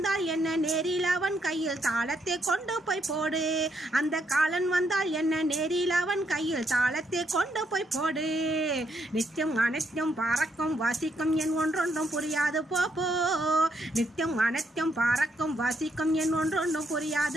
என்ன நேரில் அவன் கையில் தாளத்தை கொண்டு போய் போடு. அந்த காலன் வந்தால் என்ன நேரில் அவன் கையில் தாளத்தை கொண்டு போய் போடு. நித்தியம் அனைத்தும் பறக்கும் வாசிக்கும் என் ஒன்றொன்றும் புரியாது போப்போ. நித்தியம் அனைத்தும் பறக்கும் வாசிக்கும் என் ஒன்றொன்றும்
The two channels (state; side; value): normal; both; correlation 0.75